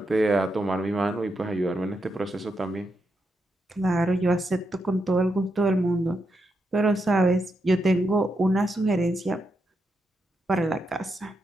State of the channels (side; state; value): both; normal; correlation 0.84